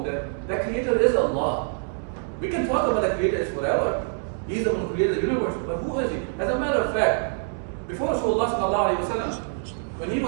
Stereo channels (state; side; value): silent; left; 62 dB below the other